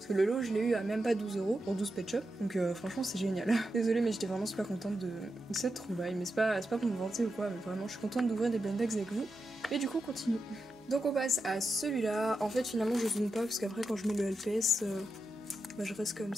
que le lot je l'ai eu à même pas 12 euros pour 12 pet shops. Donc franchement c'est génial. Désolée mais j'étais vraiment super contente de cette trouvaille. Mais c'est pas pour me vanter ou quoi, mais vraiment je suis contente d'ouvrir des blind bags avec vous. Et du coup on continue. Donc on passe à celui-là. En fait finalement je zoome pas parce qu'après quand je mets le LPS je reste comme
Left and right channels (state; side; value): normal; both; correlation 0.88